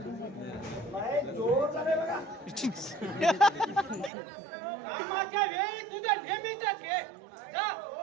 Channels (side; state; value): left; drops out; at 4.1 s